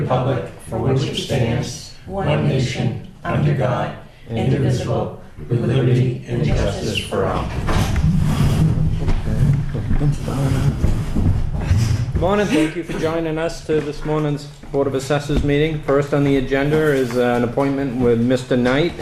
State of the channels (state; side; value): identical; both; correlation 1.00